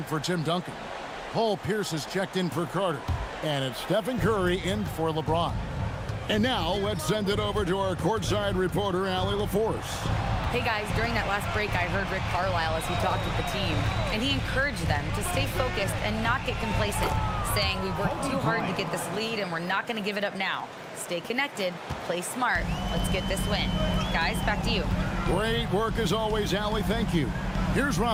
for Tim Duncan. Paul Pierce is checked in for Carter. And it's Stephen Curry in for LeBron. And now let's send it over to our courtside reporter, Allie LaForce. Hey guys, during that last break, I heard Rick Carlisle as he talked with the team, and he encouraged them to stay focused and not get complacent, saying we worked too hard to get this lead and we're not going to give it up now. Stay connected, play smart, let's get this win. Guys, back to you. Great work as always, Allie, thank you. Here's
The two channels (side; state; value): both; identical; correlation 1.00